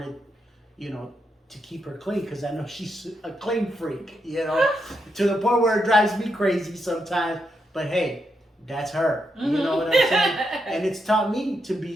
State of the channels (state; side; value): normal; both; correlation 0.82